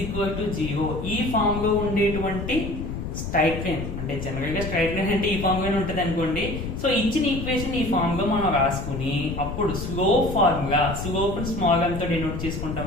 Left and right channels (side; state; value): left; noise; rumble, 6 dB below the sound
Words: equal to 0 ఈ ఫామ్ లో ఉండేటువంటి స్ట్రైట్ లైన్, అంటే జనరల్ గా స్ట్రైట్ లైన్ అంటే ఈ ఫామ్ లోనే ఉంటుంది అనుకోండి. సో ఇచ్చిన ఈక్వేషన్ ఈ ఫామ్ లో మనం రాసుకుని అప్పుడు slope formula, slope small m తో డినోట్